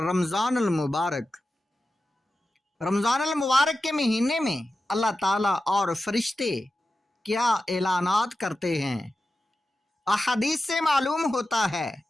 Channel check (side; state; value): both; normal; correlation 0.92